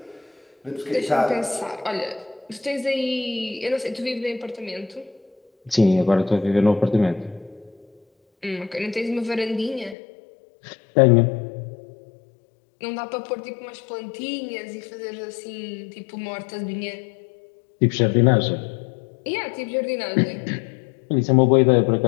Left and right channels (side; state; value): right; drops out; at 10.0 s